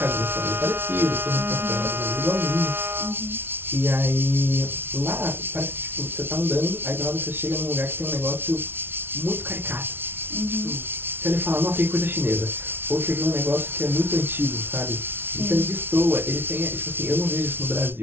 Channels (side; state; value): left; late; 0.11 ms